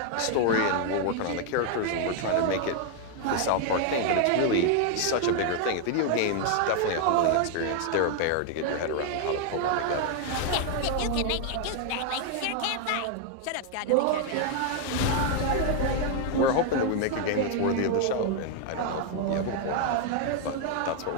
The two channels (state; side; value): different; both; correlation 0.00